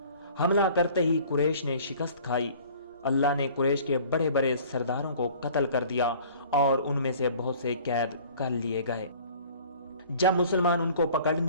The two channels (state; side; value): inverted; both; correlation -0.49